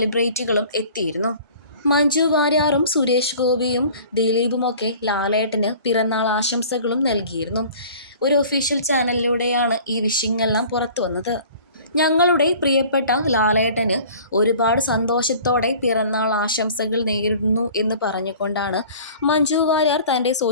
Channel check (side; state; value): both; inverted; correlation -0.47